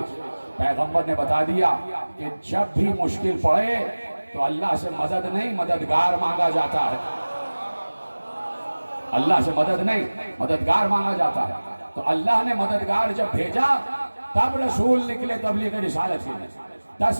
پیغمبر نے بتا دیا کہ جب بھی مشکل پڑے تو اللہ سے مدد نہیں مددگار مانگا جاتا ہے، اللہ سے مدد نہیں مددگار مانگا جاتا ہے۔ تو اللہ نے مددگار جب بھیجا تب رسول نکلے تبلیغ رسالت کے لیے۔ 10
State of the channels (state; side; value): inverted; both; correlation -1.00